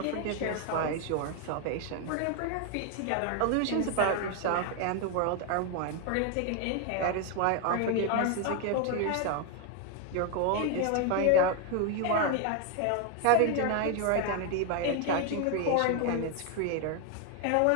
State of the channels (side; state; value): both; different; correlation 0.01